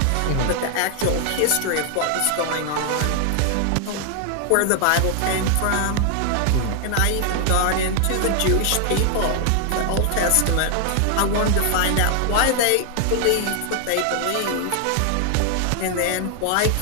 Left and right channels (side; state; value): both; different; correlation 0.00